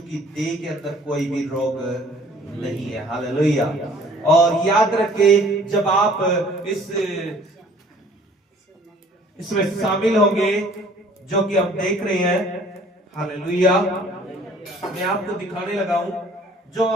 की देह के अंदर कोई भी रोग नहीं है। हालेलुया। और याद रखे, जब आप इसमें शामिल होंगे, जो कि हम देख रहे हैं, हालेलुया, मैं आपको दिखाने लगा हूं, जो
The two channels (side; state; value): both; normal; correlation 0.54